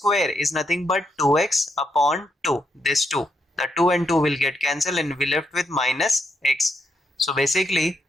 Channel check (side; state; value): both; normal; correlation 0.79